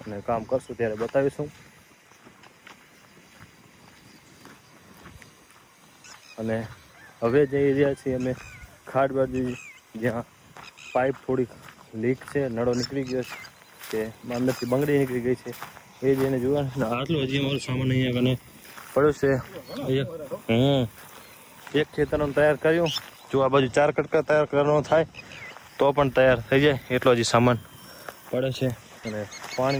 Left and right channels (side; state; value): both; identical; correlation 1.00